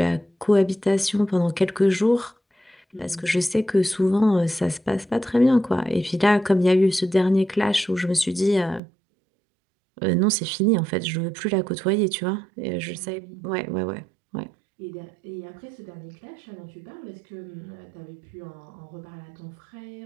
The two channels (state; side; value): drops out; left; at 8.8 s